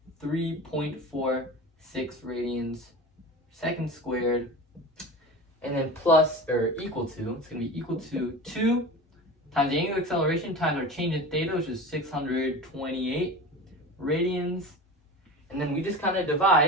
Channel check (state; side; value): normal; both; correlation 0.32